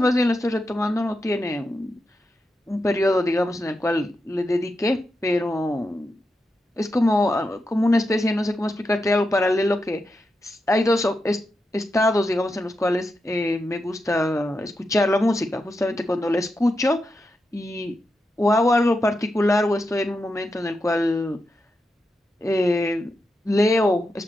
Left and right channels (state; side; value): normal; both; correlation 0.87